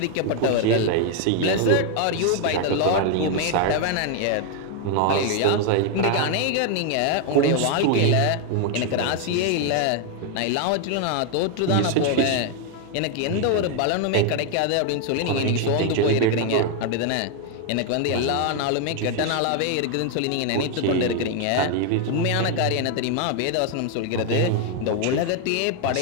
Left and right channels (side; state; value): both; different; correlation 0.00